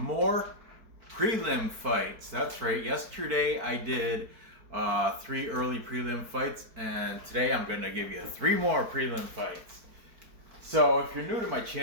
prelim fights. That's right. Yesterday I did 3 early prelim fights, and today I'm going to give you 3 more prelim fights. So if you're new to my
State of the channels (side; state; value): left; late; 4.5 ms